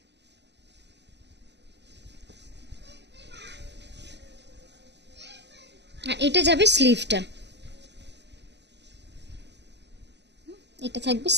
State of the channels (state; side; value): late; left; 0.50 ms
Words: আর এটা যাবে স্লিভটা, এটা থাকবে